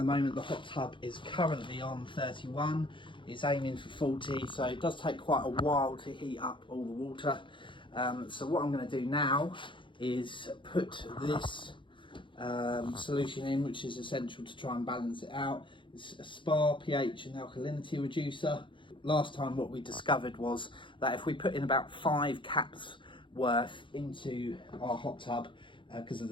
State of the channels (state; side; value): late; right; 0.24 ms